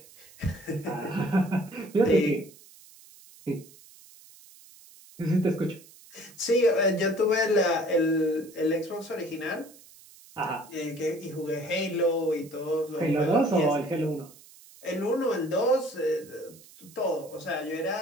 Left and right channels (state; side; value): noise; right; hiss, 23 dB below the sound